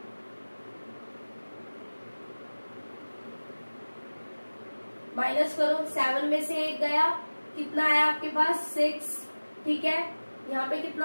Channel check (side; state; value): both; inverted; correlation -1.00